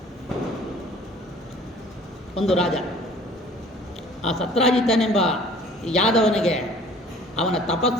ಒಂದು ರಾಜ. ಆ ಸತ್ರಾಜಿತನೆಂಬ ಯಾದವನಿಗೆ ಅವನ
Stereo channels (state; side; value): normal; both; correlation 0.51